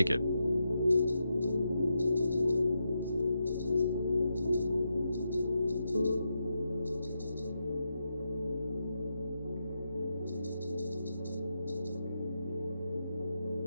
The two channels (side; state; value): both; inverted; correlation -0.85